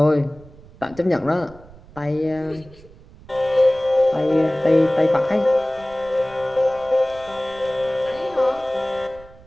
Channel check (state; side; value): noise; right; rumble, 22 dB below the sound